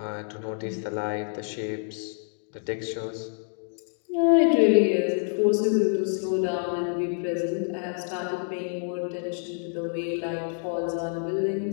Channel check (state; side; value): silent; right; digital silence